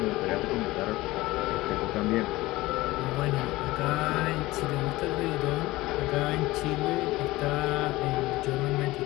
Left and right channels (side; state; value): right; quieter; 19.0 dB